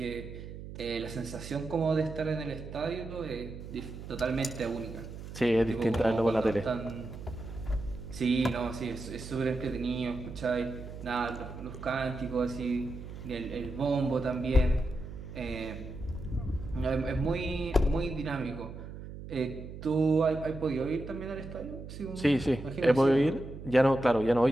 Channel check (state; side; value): noise; right; hum, 11 dB below the sound